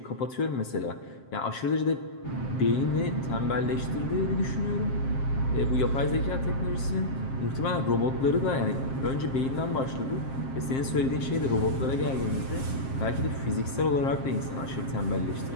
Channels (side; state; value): right; late; 7.5 ms